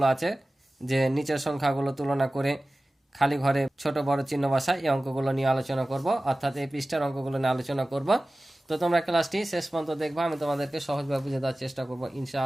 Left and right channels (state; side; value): normal; both; correlation 0.96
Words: আছে, যে নিচের সংখ্যাগুলো তুলনা করে খালি ঘরে ছোট বড় চিহ্ন বসায়, এই অঙ্কগুলো নিয়ে আলোচনা করব, অর্থাৎ এই পৃষ্ঠার অঙ্কগুলো নিয়ে আলোচনা করব। তো তোমরা ক্লাসটি শেষ পর্যন্ত দেখবা, আমি তোমাদেরকে সহজভাবে বুঝে দেওয়ার চেষ্টা করবো